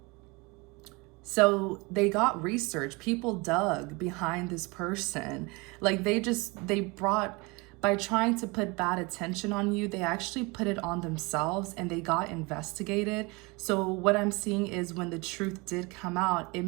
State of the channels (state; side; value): quieter; left; 26.4 dB